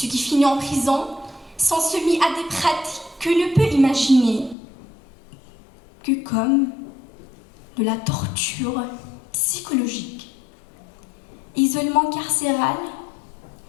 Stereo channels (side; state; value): right; drops out; at 4.5 s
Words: qui finissent en prison sont soumis à des pratiques que l'on peut imaginer que comme de la torture psychologique, isolement carcéral,